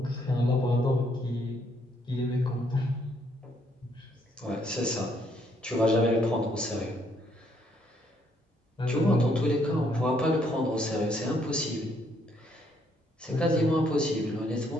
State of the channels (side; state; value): both; normal; correlation 0.70